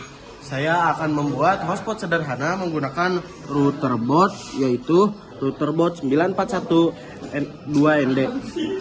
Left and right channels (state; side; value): identical; both; correlation 1.00